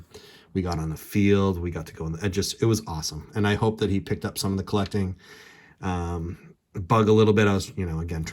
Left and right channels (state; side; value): identical; both; correlation 1.00